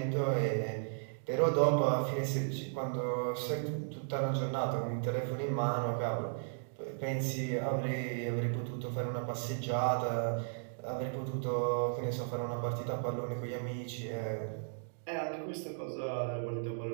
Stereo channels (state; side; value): silent; left; digital silence